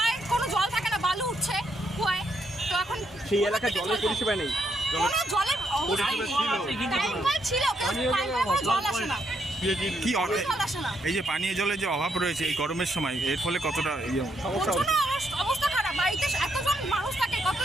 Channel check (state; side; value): normal; both; correlation 0.76